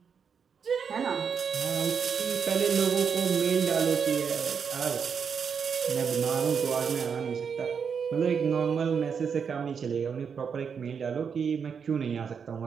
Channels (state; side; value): quieter; left; 6.6 dB